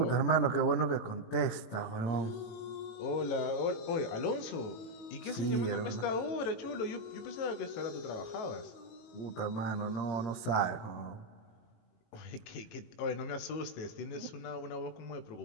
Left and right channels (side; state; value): right; late; 18 ms